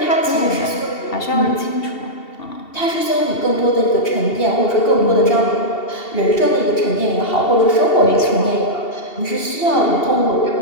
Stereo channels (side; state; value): right; late; 2.7 ms